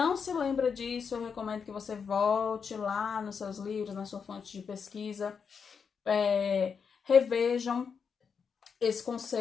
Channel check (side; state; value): right; quieter; 6.2 dB